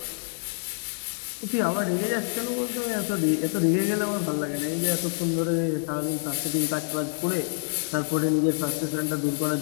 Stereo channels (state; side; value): silent; right; digital silence